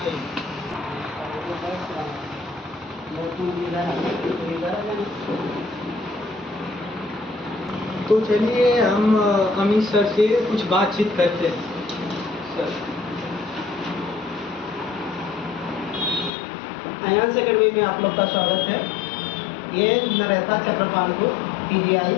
तो चलिए हम अमित सर से कुछ बातचीत करते हैं। सर, अयांश एकेडमी में आप लोग का स्वागत है। ये नरेथा चक्रपालपुर पीजीआई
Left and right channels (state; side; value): drops out; right; at 16.3 s